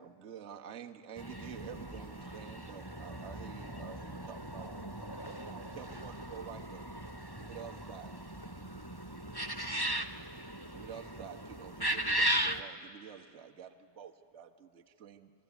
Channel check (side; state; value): right; late; 1.1 ms